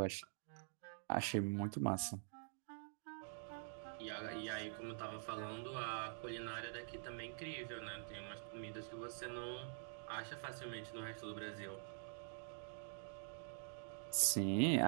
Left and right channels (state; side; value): silent; left; digital silence